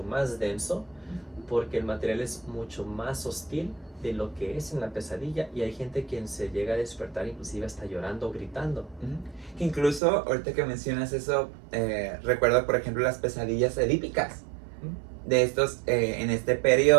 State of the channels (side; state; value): left; drops out; at 10.0 s